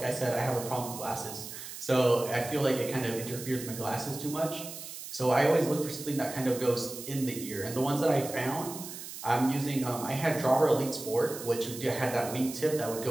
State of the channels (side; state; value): right; noise; hiss, 11 dB below the sound